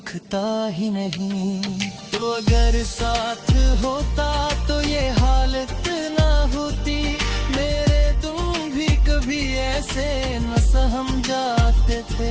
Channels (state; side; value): identical; both; correlation 1.00